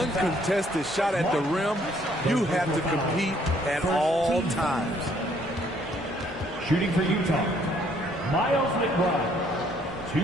shot at the rim. You have to compete at all times. Shooting for Utah, Miles McBride.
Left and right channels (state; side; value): normal; both; correlation 0.65